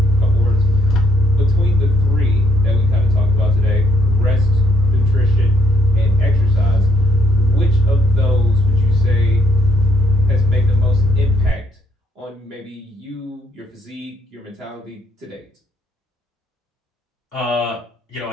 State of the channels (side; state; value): both; normal; correlation 0.69